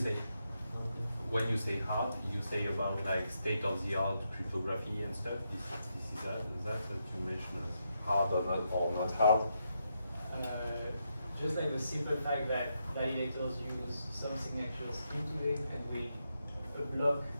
when you say hard, you say about like state-of-the-art cryptography and stuff. This is that you mentioned as hard or not hard? Just like the simple fact that validators use some signatures into it, and a block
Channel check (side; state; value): both; inverted; correlation -0.82